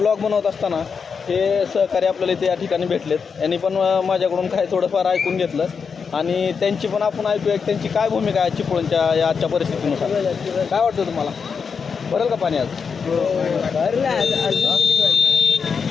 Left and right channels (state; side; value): quieter; right; 5.9 dB